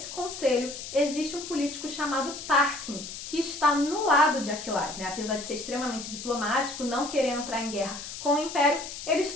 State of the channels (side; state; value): left; noise; hiss, 10 dB below the sound